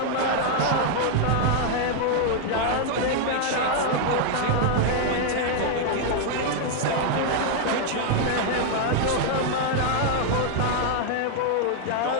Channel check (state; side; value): different; both; correlation 0.00